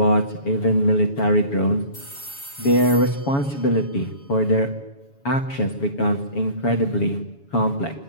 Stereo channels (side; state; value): right; late; 7.1 ms